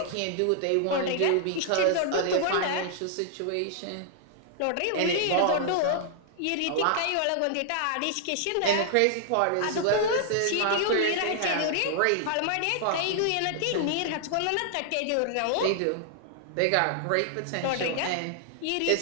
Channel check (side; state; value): both; different; correlation -0.01